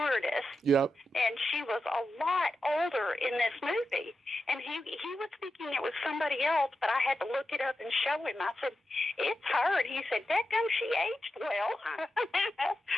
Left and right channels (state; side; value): normal; both; correlation 0.90